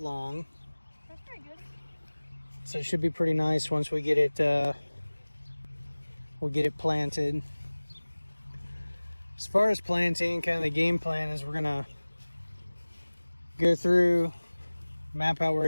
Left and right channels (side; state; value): both; inverted; correlation -1.00